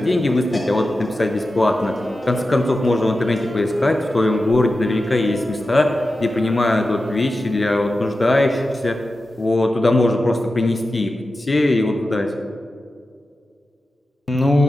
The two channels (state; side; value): normal; both; correlation 0.92